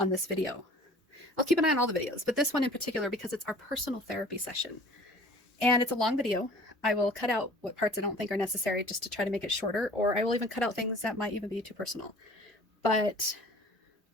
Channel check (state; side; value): normal; both; correlation 0.47